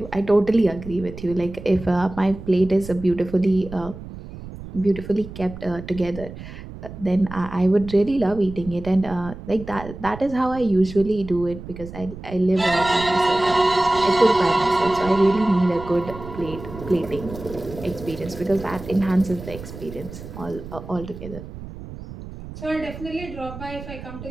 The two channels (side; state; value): right; noise; rumble, 13 dB below the sound